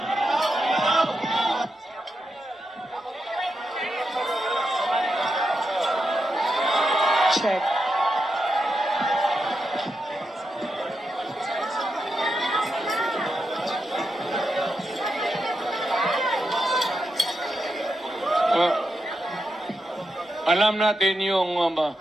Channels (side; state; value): both; normal; correlation 0.86